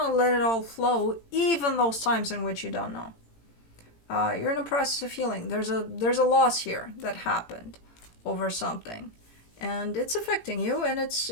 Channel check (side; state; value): right; late; 18 ms